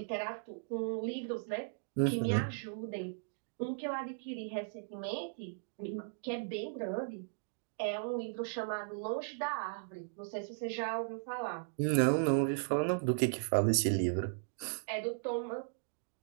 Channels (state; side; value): silent; left; digital silence